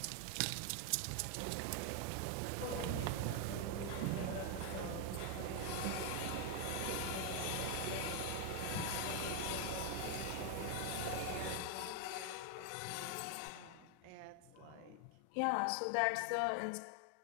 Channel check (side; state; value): both; different; correlation 0.01